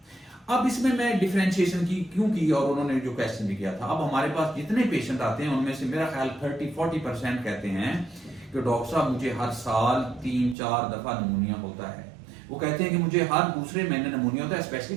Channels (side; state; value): left; drops out; at 10.6 s